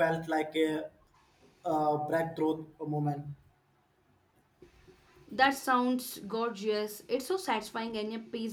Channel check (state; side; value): identical; both; correlation 1.00